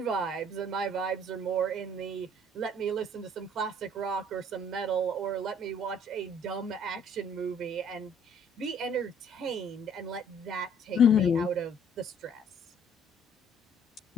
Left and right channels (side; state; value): both; normal; correlation 0.58